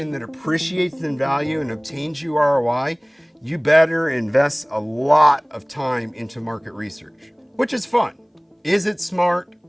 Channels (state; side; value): identical; both; correlation 1.00